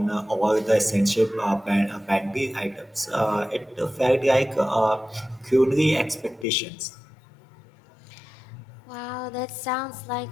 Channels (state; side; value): drops out; right; at 6.5 s